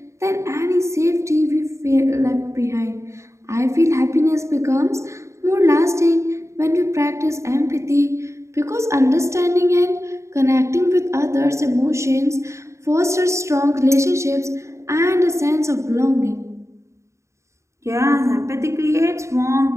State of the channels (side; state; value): left; late; 0.14 ms